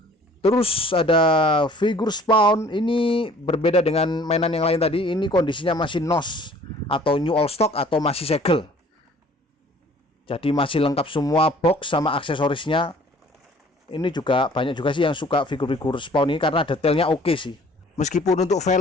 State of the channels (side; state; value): both; normal; correlation 0.53